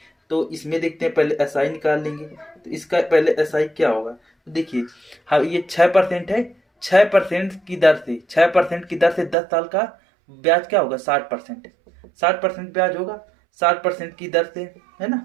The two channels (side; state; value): left; drops out; at 9.3 s